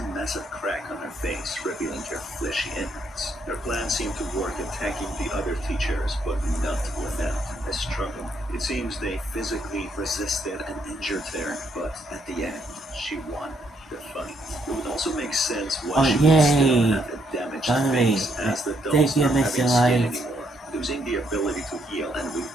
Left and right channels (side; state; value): both; normal; correlation 0.73